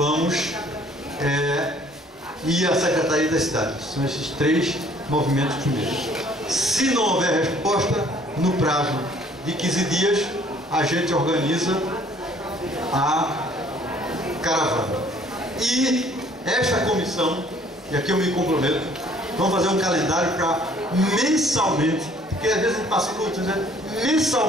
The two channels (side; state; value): both; normal; correlation 0.58